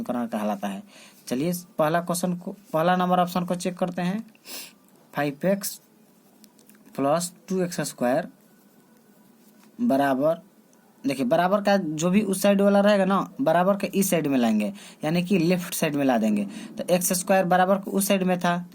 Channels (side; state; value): both; identical; correlation 1.00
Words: कहलाता है। चलिए पहला नंबर ऑप्शन को चेक करते हैं। 5x प्लस 2x² बराबर, देखिए बराबर का जो भी उस साइड वाला रहेगा ना, बराबर के इस साइड में लाएंगे, यानी कि लेफ्ट साइड में ला देंगे। तो x² बराबर को उस साइड में था